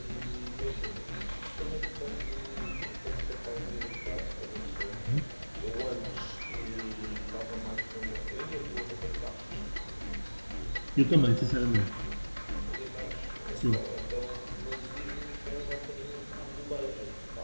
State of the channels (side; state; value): both; inverted; correlation -1.00